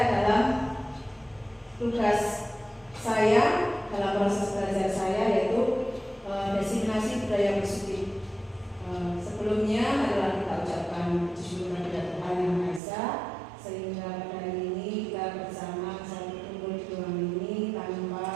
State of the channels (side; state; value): left; drops out; at 12.8 s